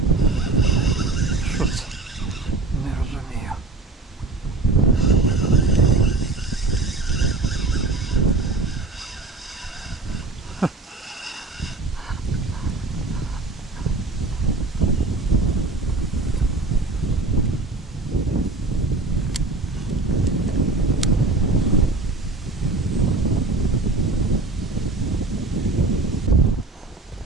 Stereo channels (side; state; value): left; quieter; 3.4 dB